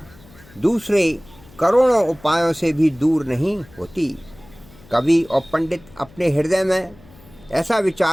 दूसरे करोड़ों उपायों से भी दूर नहीं होती। कवि और पंडित अपने हृदय में ऐसा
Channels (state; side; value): noise; left; hum, 24 dB below the sound